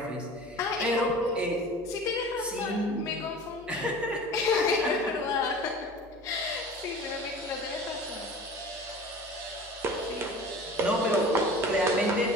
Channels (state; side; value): normal; both; correlation 0.39